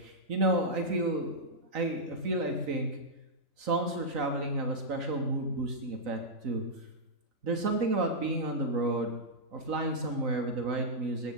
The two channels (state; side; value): late; left; 3.9 ms